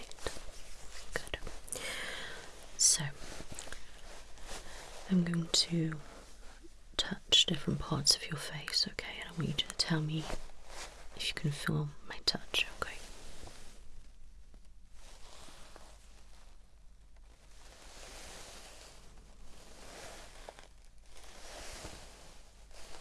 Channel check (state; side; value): identical; both; correlation 1.00